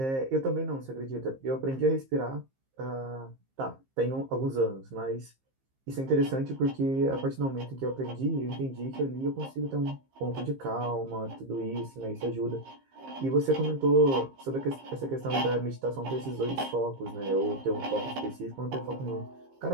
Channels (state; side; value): late; left; 15 ms